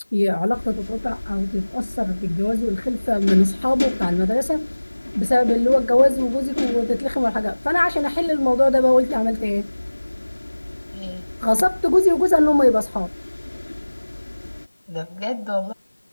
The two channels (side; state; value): both; inverted; correlation -1.00